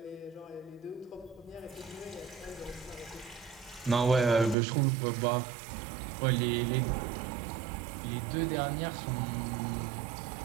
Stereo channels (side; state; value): left; drops out; at 4.5 s